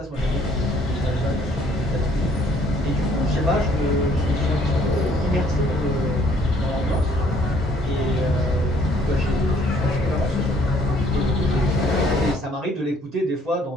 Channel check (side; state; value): both; normal; correlation 0.62